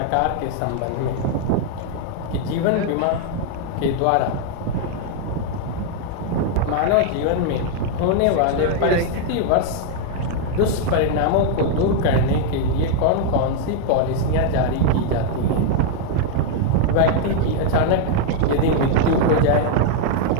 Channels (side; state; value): both; different; correlation 0.00